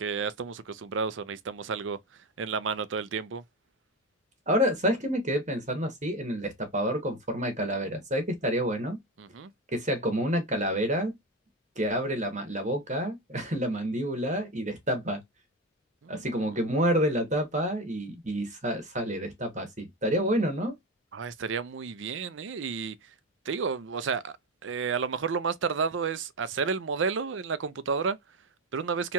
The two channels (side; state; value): both; normal; correlation 0.19